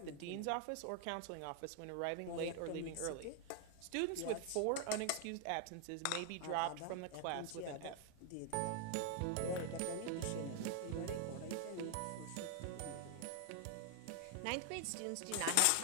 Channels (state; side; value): different; both; correlation 0.00